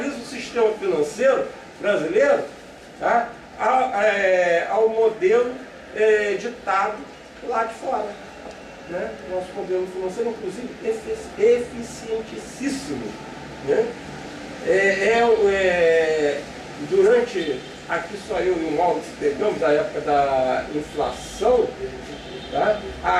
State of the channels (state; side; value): identical; both; correlation 1.00